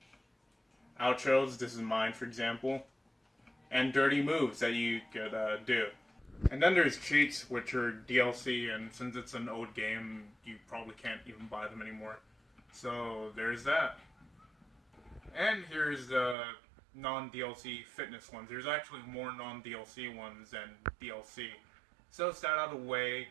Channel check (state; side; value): drops out; left; at 16.4 s